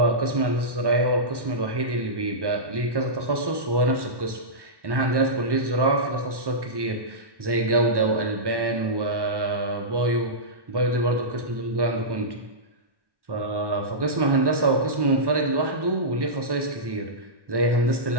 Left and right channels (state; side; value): late; left; 1.1 ms